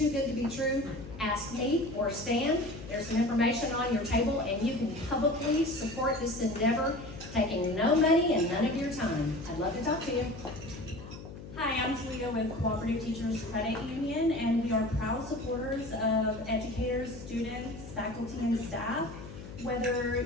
good to be true, ask me or Stan. There's some information on your table, and you can publicly support this endeavor, taking no money and none of your time. I'd love to talk to you. Hi, I'm Talia with Cooperative Teachers Credit Union, and we are proud supporters of educators, students, faculty, and staff. Whether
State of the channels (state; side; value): noise; left; hum, 13 dB below the sound